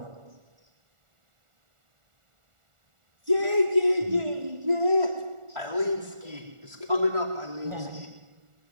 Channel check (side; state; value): left; late; 1.4 ms